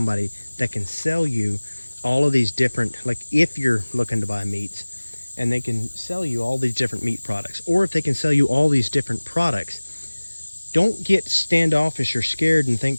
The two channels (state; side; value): inverted; both; correlation -1.00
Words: that can sell you all of these different, like if you're looking to buy meats, and they can sell you all these different meat products, or if they can sell you all these different products, don't get standoffish or scared and think